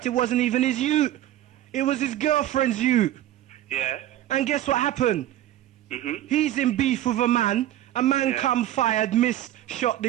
it wasn't even his ute. It was his girlfriend's ute. Yeah. And guess what happened? He's in beef with a man. A man come fired, missed, shot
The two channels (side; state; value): left; quieter; 13.1 dB